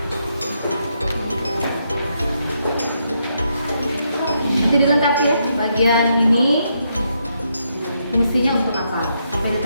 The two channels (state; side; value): inverted; both; correlation -0.79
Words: Nanti dilengkapi ya, bagian ini fungsinya untuk apa? Sampai di